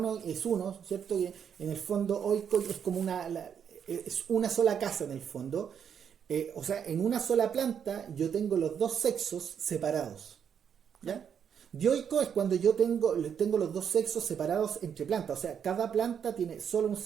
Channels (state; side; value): quieter; left; 7.9 dB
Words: es uno, ¿cierto? Que en el fondo oico es como es una sola casa en el fondo. O sea, en una sola planta yo tengo los dos sexos separados. ¿Ya? Dioico es cuando yo tengo los dos sexos separados entre plantas. O sea, cada planta tiene solo un